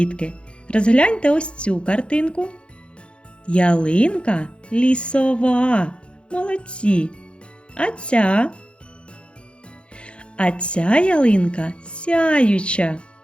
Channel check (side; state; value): right; late; 0.056 ms